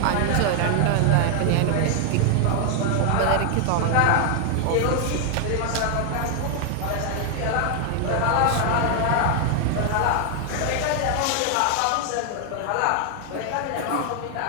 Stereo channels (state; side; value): different; both; correlation 0.00